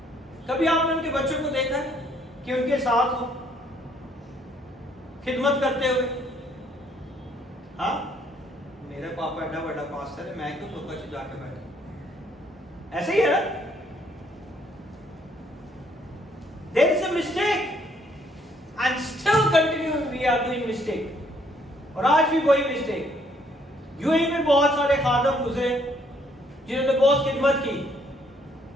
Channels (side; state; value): both; normal; correlation 0.67